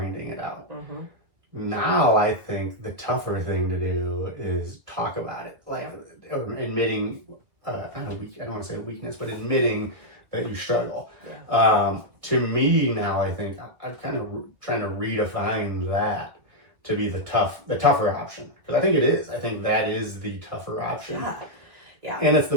it out. Mm-hmm. Now I think the tougher thing to do is talk about it, like admitting, I don't want to say weakness, but admitting that you struggle. To me now, I think I'm kind of trying to redefine that to be the tougher option, because I think it is. I think that is the tougher option. Yeah. And it's the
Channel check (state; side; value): late; left; 1.5 ms